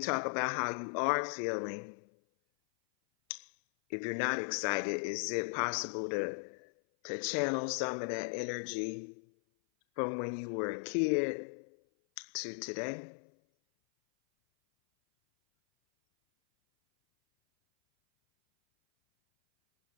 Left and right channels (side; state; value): right; silent; 53 dB below the other